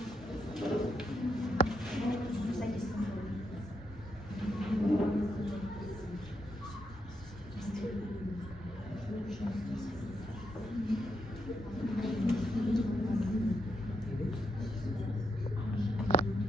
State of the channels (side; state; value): both; normal; correlation 0.81